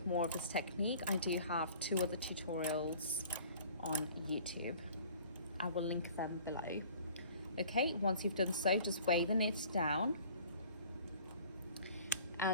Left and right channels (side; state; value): both; inverted; correlation -0.49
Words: more of this technique, I do have 2 other tutorials on YouTube. I will link them below. Okay, once you've done so, just weigh the knit down.